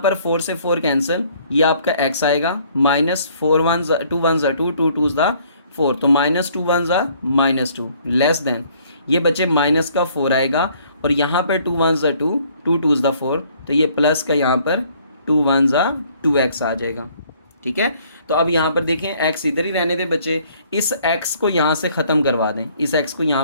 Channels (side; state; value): both; inverted; correlation -0.61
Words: 4 से 4 कैंसिल, ये आपका x आएगा, -4 1 2 1 2 2 2 4, तो -2 1 -2 लेस देन, ये बच्चे माइनस का 4 आएगा, और यहाँ पर 2 1 2 2 2 4, तो ये प्लस का यहाँ पर 2 1 2x आ जाएगा। ठीक है, तो अब यहाँ पर देखें x इधर ही रहने दें बच्चे, इस x को यहाँ से ख़त्म करवा दें, इस x को